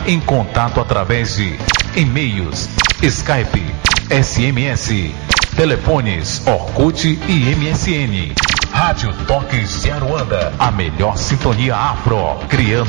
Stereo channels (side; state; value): left; quieter; 31.4 dB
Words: em contato através de e-mails, Skype, SMS, telefones, Orkut e MSN. Rádio Toques de Aruanda, a melhor sintonia afro,